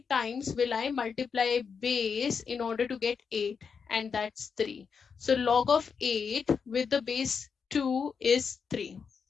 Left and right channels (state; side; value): quieter; right; 6.0 dB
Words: times will I multiply base in order to get 8? And that's 3. So log of 8 with the base 2 is 3.